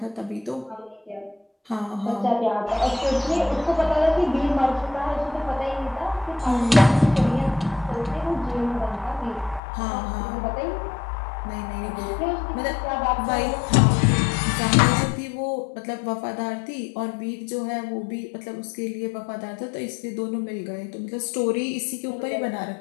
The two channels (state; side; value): drops out; right; at 9.6 s